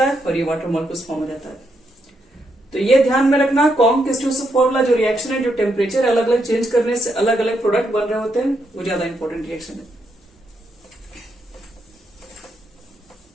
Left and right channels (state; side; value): normal; both; correlation 0.79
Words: है और ये वाटर मॉलिक्यूल्स फॉर्म हो जाता है। तो ये ध्यान में रखना, कॉन्ग-किस्टोसो फॉर्मूला जो रिएक्शन है, जो टेम्परेचर अलग अलग चेंज करने से अलग अलग प्रोडक्ट बन रहे होते हैं, वो ज्यादा इंपॉर्टेंट रिएक्शन है।